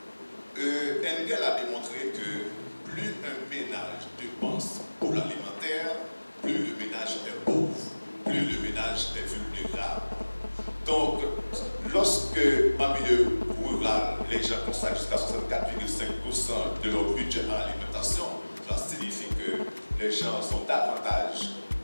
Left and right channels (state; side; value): inverted; both; correlation -1.00